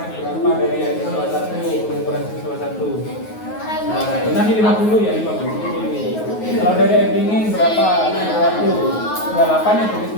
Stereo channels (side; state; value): right; late; 9.4 ms